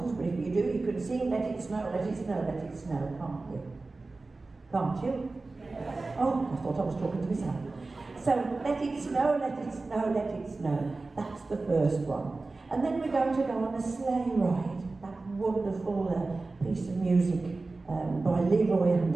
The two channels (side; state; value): left; quieter; 3.5 dB